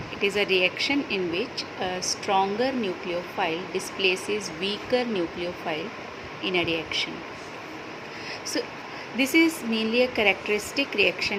It is a reaction in which a stronger nucleophile displaces weaker nucleophile in a reaction. So this is mainly a characteristic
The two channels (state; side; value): identical; both; correlation 1.00